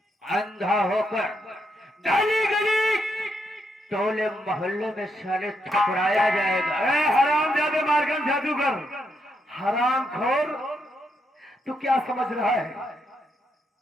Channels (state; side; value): normal; both; correlation 0.79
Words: अंधा होकर गली गली टोले मोहल्ले में साले ठुकराया जाएगा। हराम जादे मारगन जादूगर, हराम खोर, तू क्या समझ रहा है